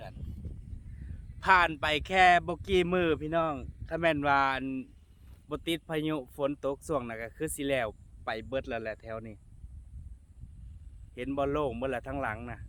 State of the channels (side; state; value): both; identical; correlation 1.00